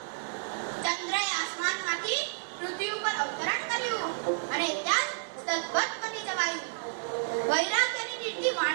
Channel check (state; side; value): silent; left; digital silence